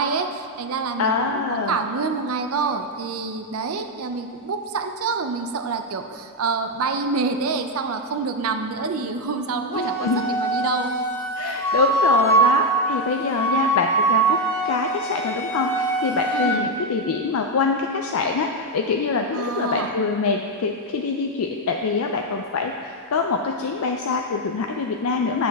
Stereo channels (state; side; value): normal; both; correlation 0.03